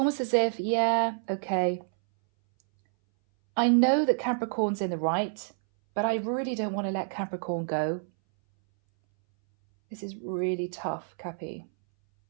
as if, yeah, okay. I know that Capricorn's in the right, but I really don't want to let Capricorn go. This is really tough, Cappy.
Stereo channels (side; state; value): left; silent; 59 dB below the other